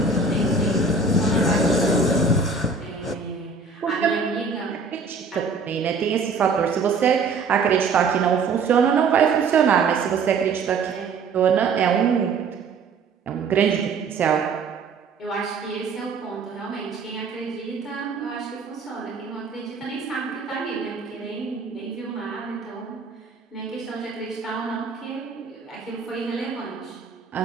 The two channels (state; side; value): quieter; left; 4.5 dB